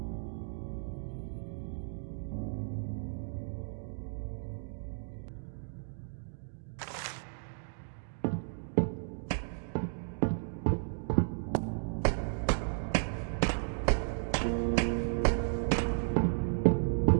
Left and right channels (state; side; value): silent; left; digital silence